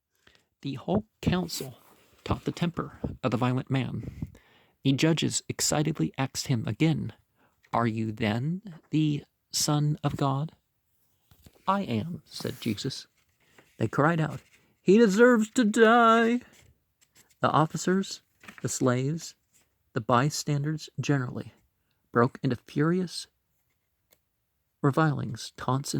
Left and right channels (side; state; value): both; identical; correlation 1.00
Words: The whole council taught the temper of the violent man. The judges excitedly asked him again, "Are you then the Son of God?" "I am," said Jesus. They cried out, "He deserves to die." The officers, the slaves, the bystanders generally broke into furious revilings, taunts,